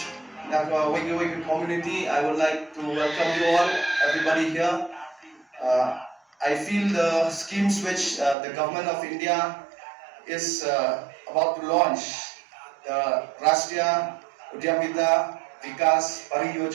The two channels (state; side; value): drops out; left; at 8.3 s